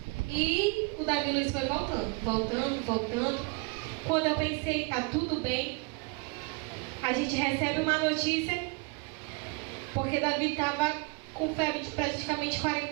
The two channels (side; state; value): left; quieter; 31.0 dB